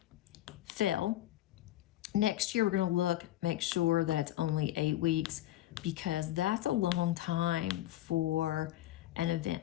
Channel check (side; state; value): right; quieter; 14.3 dB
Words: fell. Next year, we're going to make sure that it's only 8 weeks because that's a long time for an